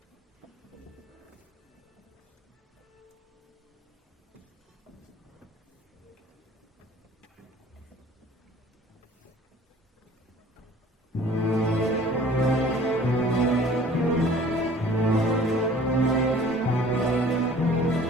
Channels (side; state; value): both; normal; correlation 0.50